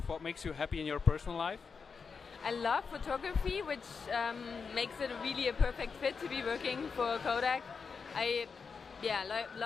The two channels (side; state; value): right; quieter; 5.4 dB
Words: what makes you happy in your personal life? I love photography, which makes it really a perfect fit to be working for Kodak. I